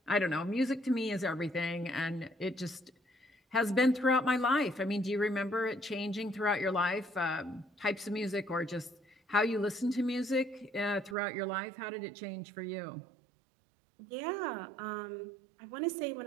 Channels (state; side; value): drops out; left; at 11.2 s